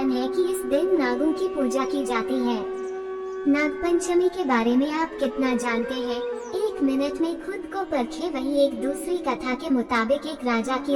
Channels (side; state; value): both; identical; correlation 1.00